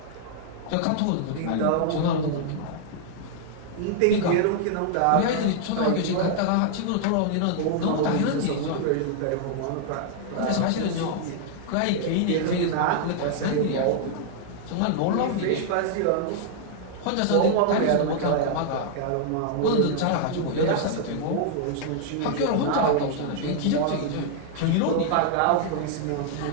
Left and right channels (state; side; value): different; both; correlation -0.01